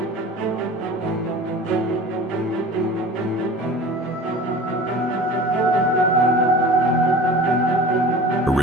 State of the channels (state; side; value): normal; both; correlation 0.39